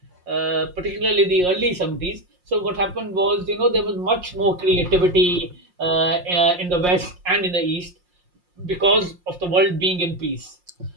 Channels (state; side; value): late; left; 5.6 ms